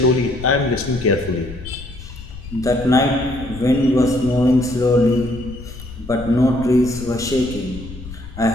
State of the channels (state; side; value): noise; left; rumble, 14 dB below the sound